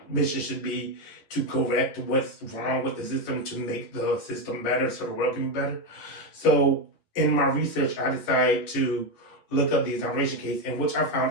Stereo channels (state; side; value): late; right; 10 ms